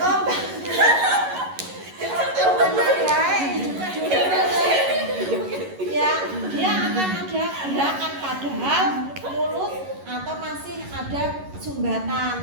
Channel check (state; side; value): late; left; 11 ms